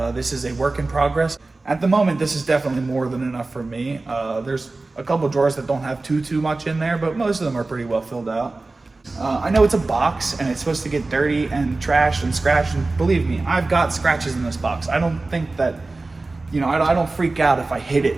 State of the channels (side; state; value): left; quieter; 3.3 dB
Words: This is a work in progress. At the moment, this is definitely more than enough for me. There's a couple drawers that don't have too much in there, but most of them are pretty well filled out. I know it's a box and it's supposed to get dirty and trashed and scratched, and believe me, I've got scratches in this box. I don't think that, I don't freak out if I hit it